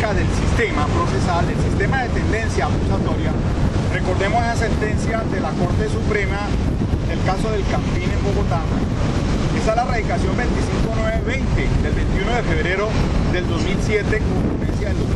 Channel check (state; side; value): identical; both; correlation 1.00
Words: del sistema procesal, el sistema de tendencia acusatoria. Recordemos esa sentencia de la Corte Suprema, el caso del Campín en Bogotá. Esa es la radicación 25920 del 21 de febrero del 2007 con ponencia del